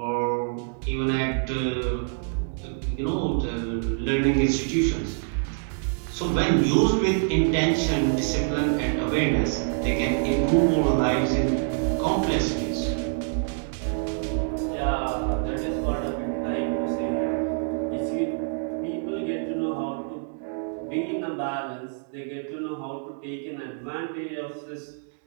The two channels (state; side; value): silent; left; 61 dB below the other